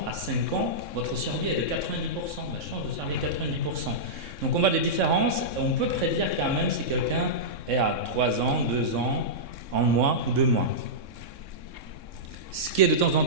à 5 ans, votre survie est de 90%, la chance de survie est 90%. Donc on voit des différences, et on peut prédire quand même si quelqu'un est à 3 ans, 2 ans, 1 mois ou 2 mois. Ce qui est de temps en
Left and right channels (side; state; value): left; late; 3.6 ms